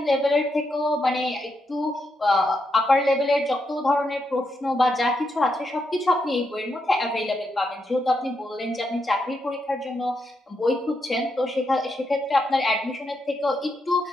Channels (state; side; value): normal; both; correlation 0.82